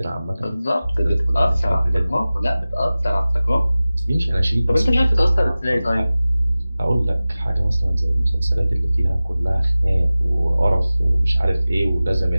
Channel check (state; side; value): inverted; both; correlation -0.97